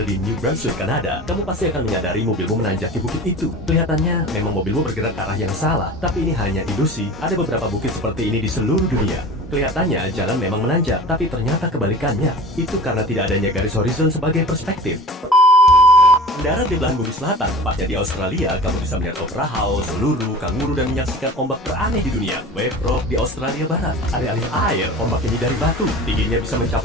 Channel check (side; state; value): both; normal; correlation 0.38